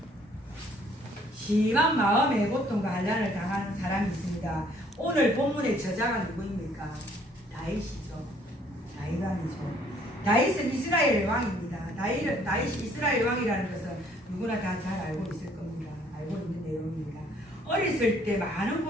심한 마음의 고통과 환난을 당하는 사람이 있습니다. 오늘 본문의 저자가 누구입니까? 다윗이죠. 다윗은 이스라엘 왕입니다. 다윗이 이스라엘 왕이라는 것은 누구나 다 잘 알고 있을 겁니다. 알고 있는 내용입니다. 어렸을 때 많은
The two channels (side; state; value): both; normal; correlation 0.62